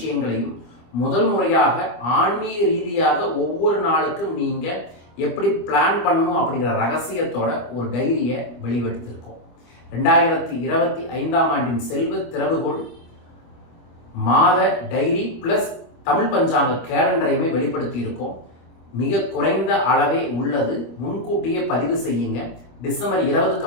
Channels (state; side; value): late; right; 25 ms